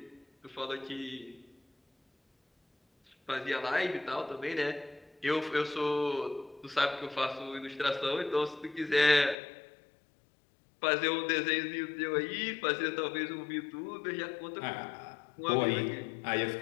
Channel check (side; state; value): right; drops out; at 9.3 s